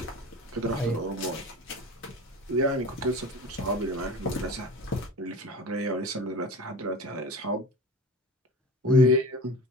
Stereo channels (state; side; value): normal; both; correlation 0.35